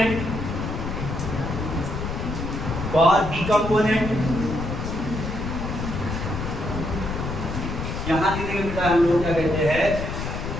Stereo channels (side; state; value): left; noise; rumble, 4 dB below the sound